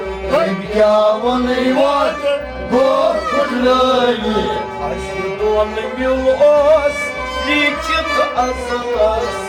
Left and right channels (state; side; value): identical; both; correlation 1.00